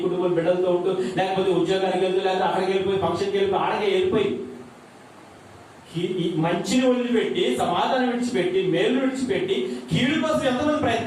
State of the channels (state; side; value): identical; both; correlation 1.00